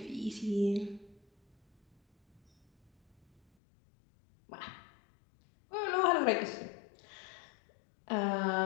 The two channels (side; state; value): right; drops out; at 3.4 s